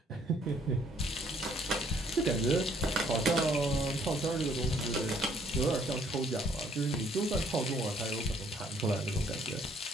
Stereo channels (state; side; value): normal; both; correlation 0.64